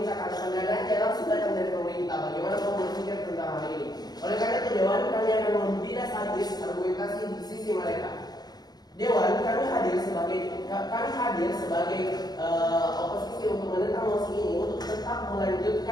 karena pendanaan langsung datang dari pemerintah. Bagaimana kamu berpikir tentang hal ini? Oleh karena itu Dewan, kami kami akan tidak sadis argumentasi di sisi mereka. Dewan, kami hadir sebagai oposisi untuk menentang mosi ini untuk tetap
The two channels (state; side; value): late; right; 0.19 ms